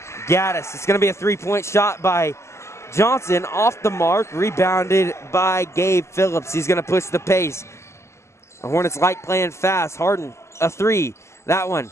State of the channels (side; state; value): right; late; 0.13 ms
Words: Gaddis. It's going to be a 3-point shot by Johnson, off the mark, rebounded by Gabe Phillips. He's going to push the pace. The Hornets like playing fast. Harden, a 3. That one